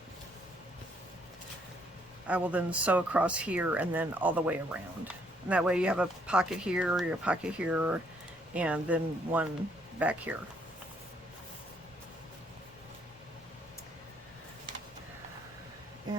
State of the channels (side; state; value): both; normal; correlation 0.69